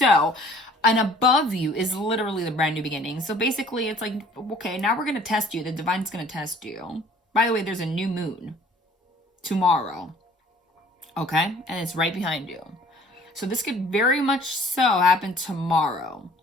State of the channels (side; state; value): both; normal; correlation 0.53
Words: and above you is literally the brand new beginning. So basically it's like, okay, now we're going to test you. The divine's going to test you. By the way, there's a new moon tomorrow, okay, and it's right behind you. So this could very much so happen tomorrow,